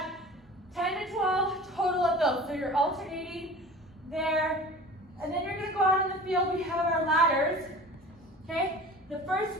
10 to 12 total of those. So you're alternating there, and then you're going to go out in the field. We have our ladders. Okay, the first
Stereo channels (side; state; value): both; normal; correlation 0.40